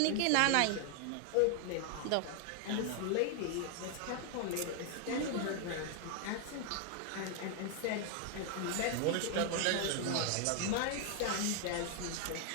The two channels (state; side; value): different; both; correlation 0.00